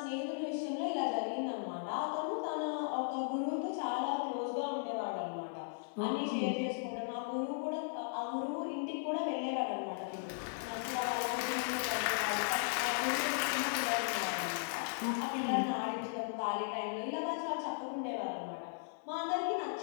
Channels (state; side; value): silent; right; 53 dB below the other